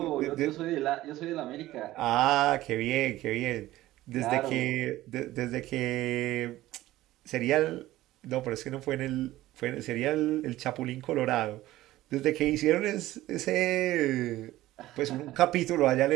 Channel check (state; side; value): quieter; left; 16.0 dB